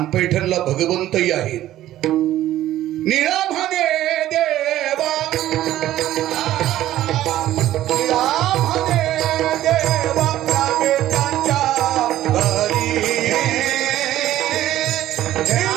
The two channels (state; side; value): quieter; left; 13.7 dB